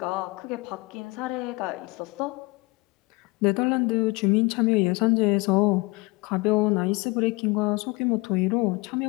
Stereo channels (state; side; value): quieter; right; 24.9 dB